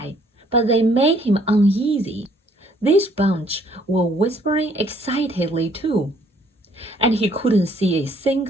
but they made him uneasy. This bunch were whispering excitedly too, and he couldn't see a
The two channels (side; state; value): both; normal; correlation 0.63